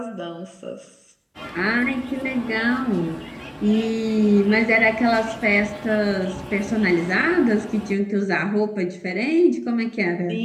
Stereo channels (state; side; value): identical; both; correlation 1.00